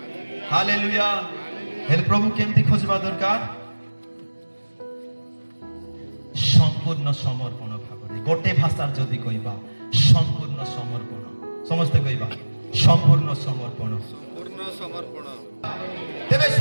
हालेलुया हेल प्रभु केमती खोजबा दरकार संपूर्ण समर्पण भाବରେ गोटे भाषार जदि कहिबा संपूर्ण समर्पण समस्त कहिबा संपूर्ण समर्पण तेबे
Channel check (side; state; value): both; inverted; correlation -1.00